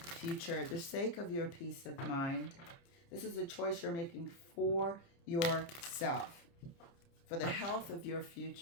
the sake of your peace of mind. This is a choice you're making for yourself, for the health of your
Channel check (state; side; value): late; right; 29 ms